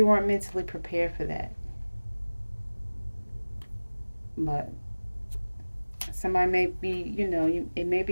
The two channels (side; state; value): both; inverted; correlation -1.00